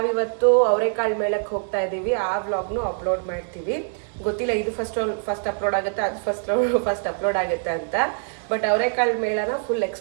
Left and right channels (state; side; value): silent; left; 63 dB below the other